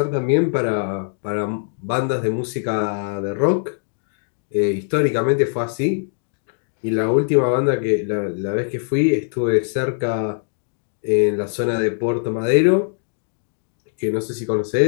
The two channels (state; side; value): silent; right; digital silence